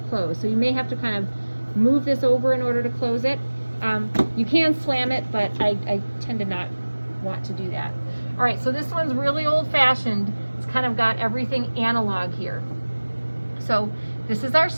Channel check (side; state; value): both; inverted; correlation -1.00